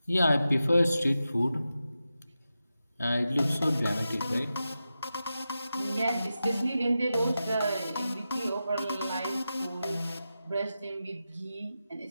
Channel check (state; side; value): inverted; both; correlation -0.91